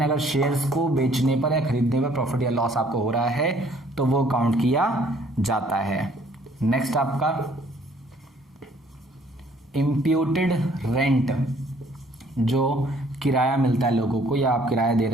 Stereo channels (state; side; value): normal; both; correlation 0.60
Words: अगर शेयर्स को बेचने पर या खरीदने पर प्रॉफिट या लॉस आपको हो रहा है तो वो काउंट किया जाता है। नेक्स्ट आपका इम्प्यूटेड रेंट, जो किराया मिलता है लोगों को या आप किराया दे